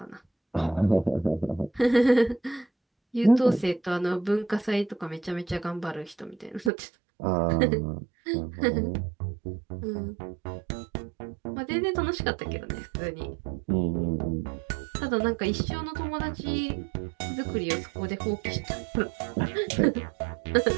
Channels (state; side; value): drops out; left; at 6.7 s